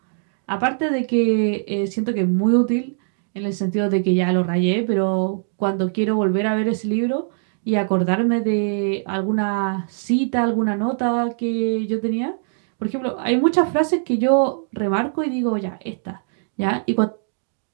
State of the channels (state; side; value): silent; left; digital silence